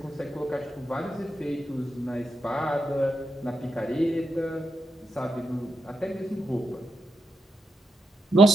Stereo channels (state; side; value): normal; both; correlation 0.84